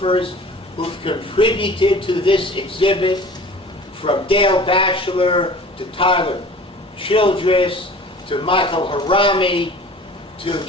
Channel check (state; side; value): normal; both; correlation 0.44